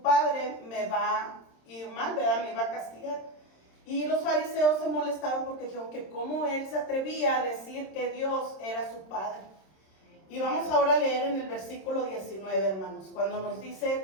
me va a ir mal, ¿verdad?, me iba a castigar. Y los fariseos se molestaron porque dijeron que cómo él se atrevía a decir que Dios era su padre. Y vamos ahora a leer en el versículo 19, hermanos, cuando nos dice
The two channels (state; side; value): late; right; 26 ms